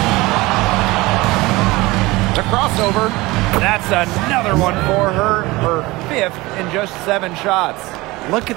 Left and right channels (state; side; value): quieter; left; 21.1 dB